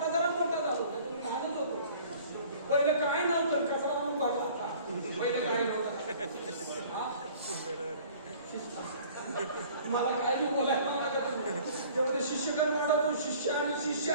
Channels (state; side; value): inverted; both; correlation -0.50